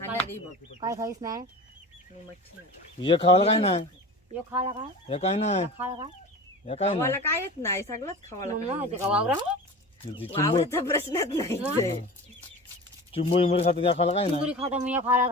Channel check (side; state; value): both; normal; correlation 0.33